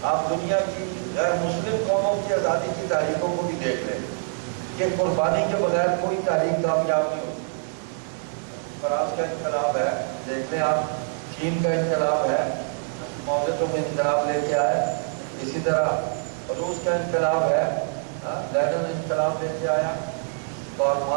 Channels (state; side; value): silent; left; digital silence